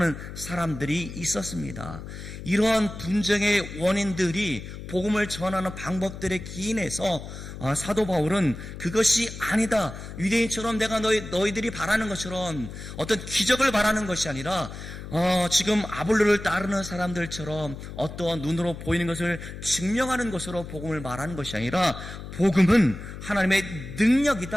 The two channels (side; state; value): left; noise; hum, 11 dB below the sound